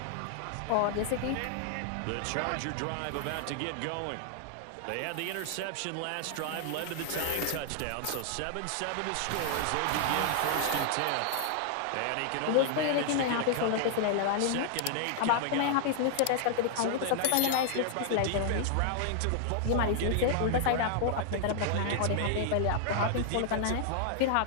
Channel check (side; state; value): both; different; correlation -0.01